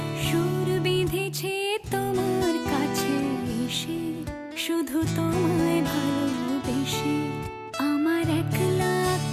সুর বিঁধেছে তোমার কাছে এসে, শুধু তোমায় ভালোবেসে। আমার একলা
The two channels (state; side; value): identical; both; correlation 1.00